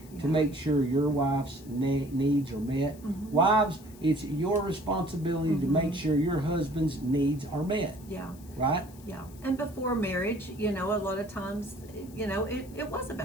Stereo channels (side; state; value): left; noise; hiss, 23 dB below the sound